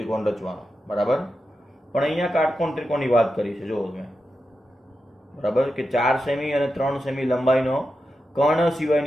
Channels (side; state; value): both; normal; correlation 0.89